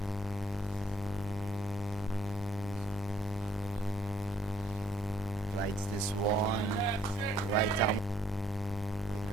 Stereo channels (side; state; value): both; normal; correlation 0.65